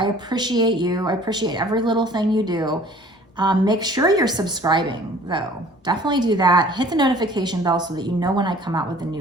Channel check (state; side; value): normal; both; correlation 0.51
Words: appreciate you. I appreciate every little thing you do. Make sure you're subscribing though. Definitely do that. Hit the notification bell so that you know when I come out with a